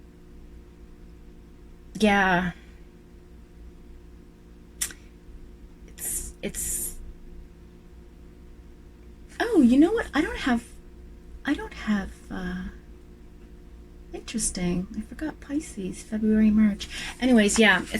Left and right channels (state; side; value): identical; both; correlation 1.00